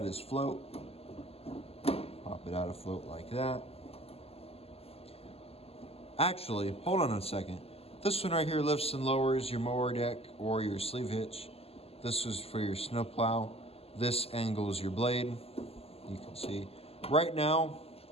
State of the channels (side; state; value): right; late; 0.29 ms